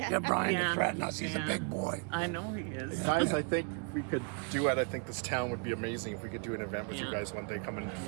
Get Brian Yeah. to threaten us. He's a Yeah. big boy. I know he is. Guys, I think we could do it. I think this town would be amazing if we could do an event with you Yeah. guys one day coming into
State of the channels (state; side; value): quieter; left; 37.2 dB